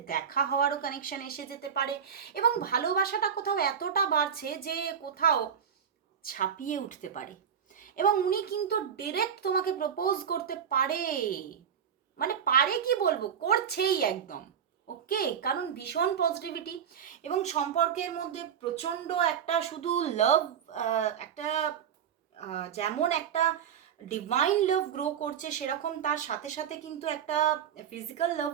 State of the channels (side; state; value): left; quieter; 8.0 dB